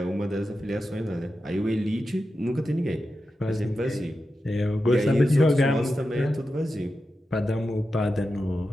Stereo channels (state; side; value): normal; both; correlation 0.91